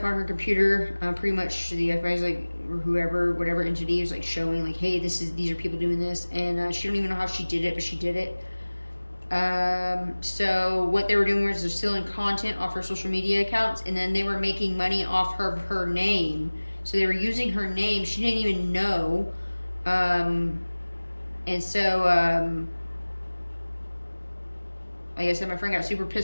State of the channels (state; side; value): inverted; both; correlation -1.00